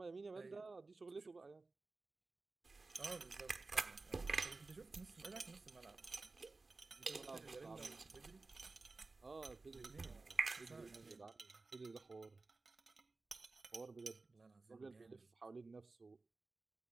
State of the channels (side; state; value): left; quieter; 3.7 dB